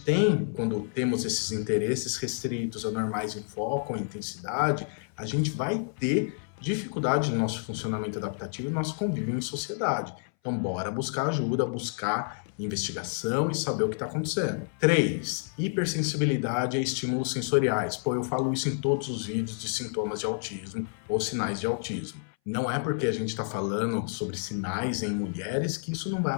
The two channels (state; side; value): silent; right; 58 dB below the other